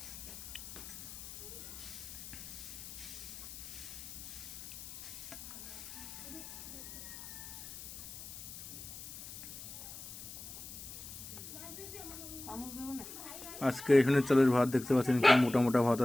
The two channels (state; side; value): noise; left; hiss, 11 dB below the sound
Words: আজকে এখানে চালের ভাত দেখতে পাচ্ছেন, কি মোটা মোটা ভাত।